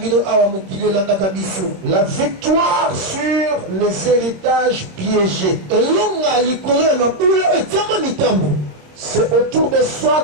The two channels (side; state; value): left; late; 26 ms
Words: La victoire sur les héritages piégés. C'est autour de